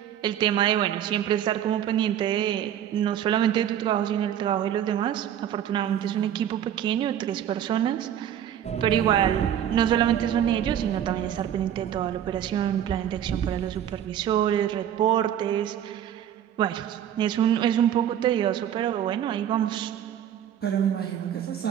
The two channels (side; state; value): left; quieter; 10.2 dB